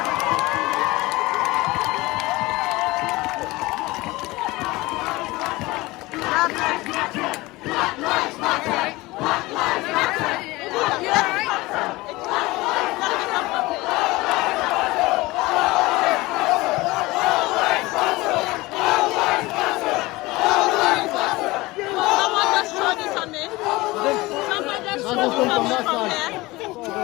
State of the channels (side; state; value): right; quieter; 20.9 dB